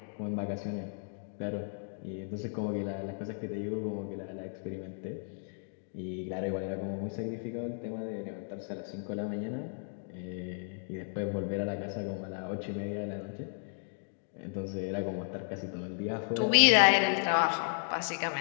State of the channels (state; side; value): silent; right; digital silence